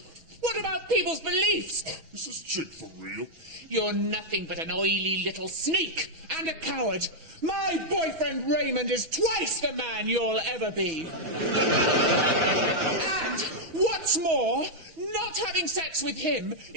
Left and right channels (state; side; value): late; left; 6.1 ms